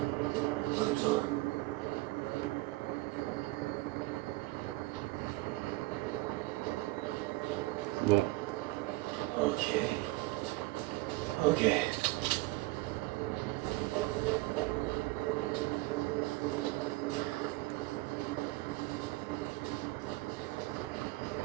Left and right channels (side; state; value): left; quieter; 20.9 dB